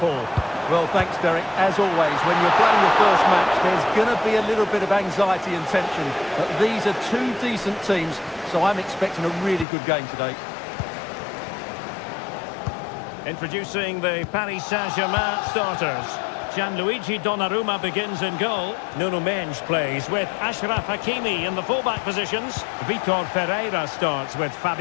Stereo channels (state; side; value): drops out; right; at 9.7 s